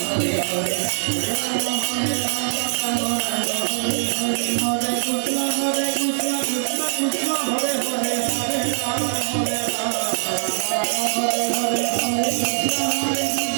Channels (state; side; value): silent; left; 64 dB below the other